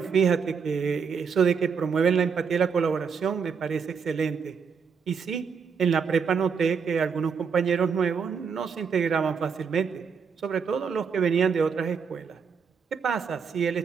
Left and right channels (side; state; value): left; quieter; 6.1 dB